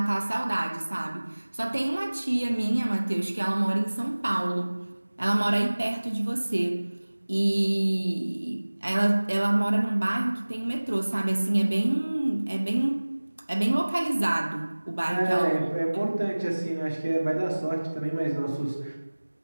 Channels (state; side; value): inverted; both; correlation -1.00